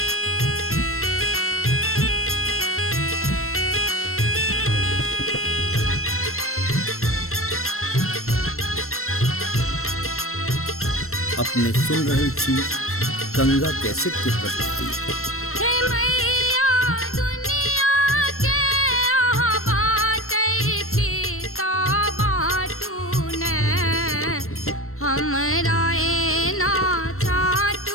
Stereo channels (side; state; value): right; late; 0.62 ms